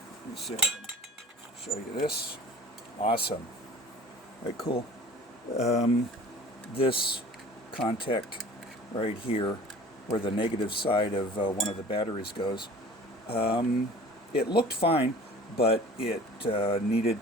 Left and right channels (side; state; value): both; normal; correlation 0.45